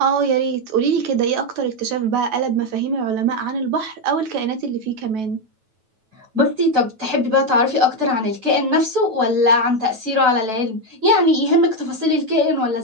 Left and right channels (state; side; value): late; left; 9.2 ms